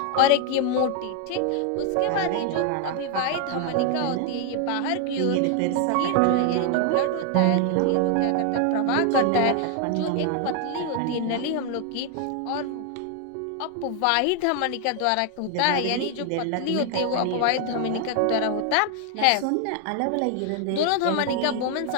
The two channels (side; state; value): both; different; correlation 0.00